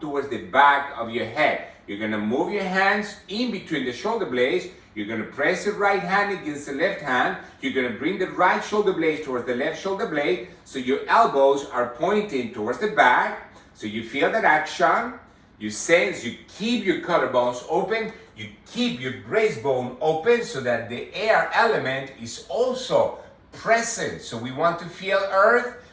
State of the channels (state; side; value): identical; both; correlation 1.00